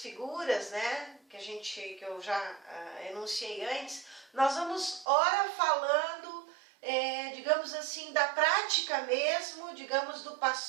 né, que eu já enunciei antes, nós vamos ora falando, digamos assim, da prática mesmo, digamos, do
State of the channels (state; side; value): drops out; left; at 5.1 s